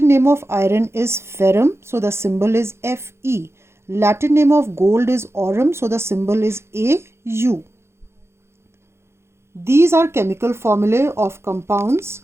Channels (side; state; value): left; late; 0.13 ms